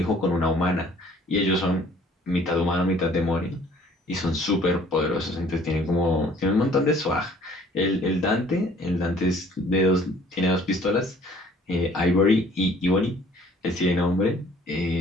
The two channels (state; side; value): normal; both; correlation 0.56